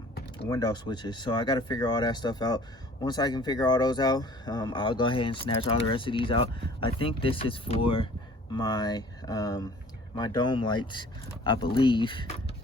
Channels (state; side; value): normal; both; correlation 0.50